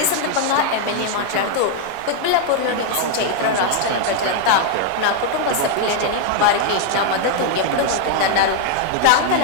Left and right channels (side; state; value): both; different; correlation 0.00